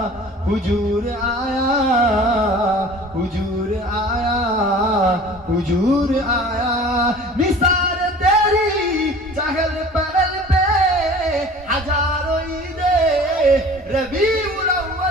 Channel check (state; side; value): normal; both; correlation 0.44